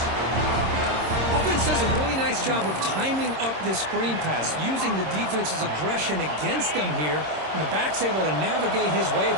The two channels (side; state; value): left; late; 26 ms